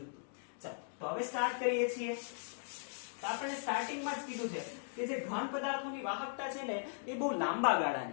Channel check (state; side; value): silent; right; digital silence